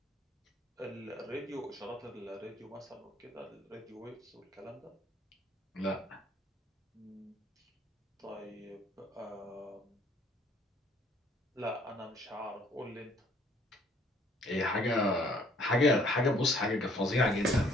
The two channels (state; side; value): normal; both; correlation 0.60